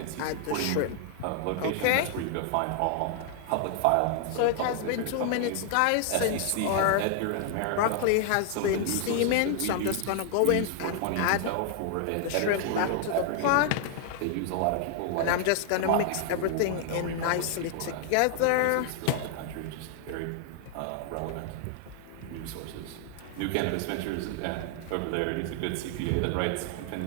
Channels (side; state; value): both; different; correlation 0.00